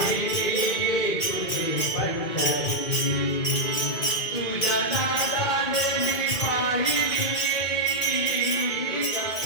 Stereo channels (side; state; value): right; late; 2.1 ms